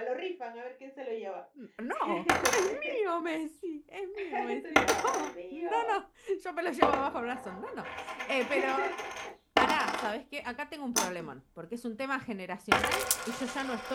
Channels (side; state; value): both; identical; correlation 1.00